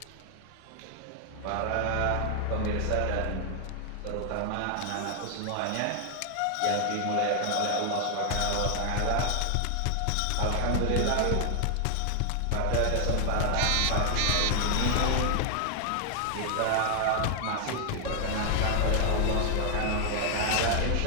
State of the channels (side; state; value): both; different; correlation 0.00